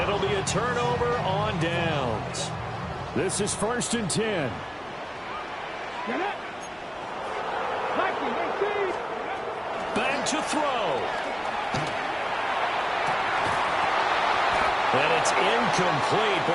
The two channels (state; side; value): identical; both; correlation 1.00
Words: be a turnover on downs. This is 1st and 10. Back to throw. And it's incomplete.